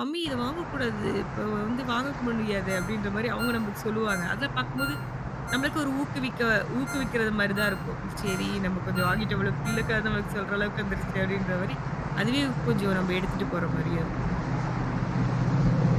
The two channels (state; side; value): identical; both; correlation 1.00